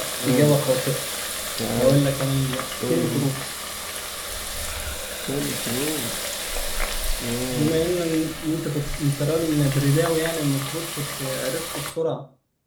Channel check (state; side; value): identical; both; correlation 1.00